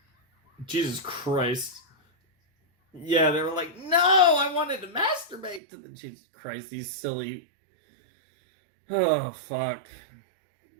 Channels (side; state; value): left; drops out; at 5.6 s